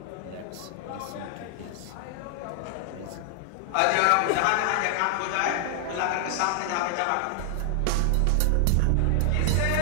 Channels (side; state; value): both; different; correlation 0.00